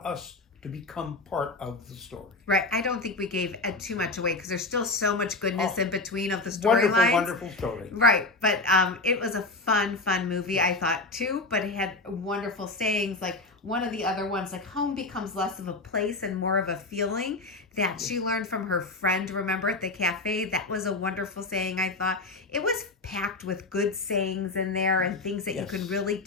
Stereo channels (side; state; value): right; quieter; 3.1 dB